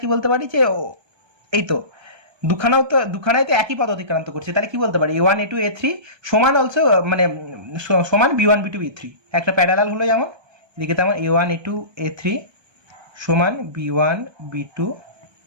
কি বলতে পারি যে এই তো দুখানাই তো একই পথ অতিক্রান্ত করছে। তাহলে কি বলতে পারি A1 A2 A3 সমান অলসো মানে সমান B1 B2 B3, একটা প্যারালাল হলো যেমন এদিকে, তেমন A1 A2 A3 সমান B1 B2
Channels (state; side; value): late; left; 1.3 ms